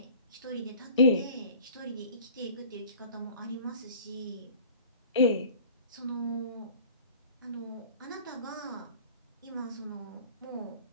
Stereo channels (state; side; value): inverted; both; correlation -0.46